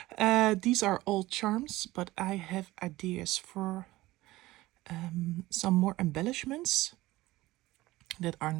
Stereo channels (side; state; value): left; quieter; 18.1 dB